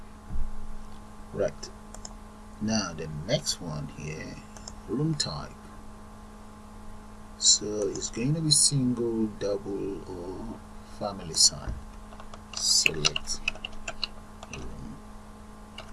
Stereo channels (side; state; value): both; identical; correlation 1.00